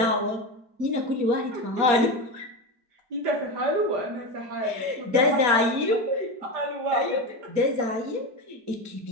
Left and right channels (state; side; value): late; left; 4.3 ms